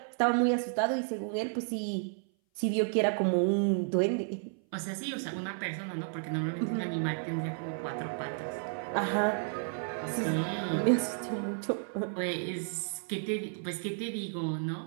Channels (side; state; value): left; silent; 56 dB below the other